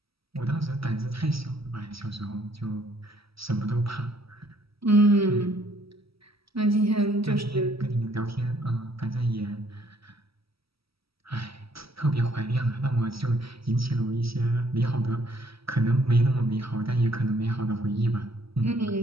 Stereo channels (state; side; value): late; left; 0.76 ms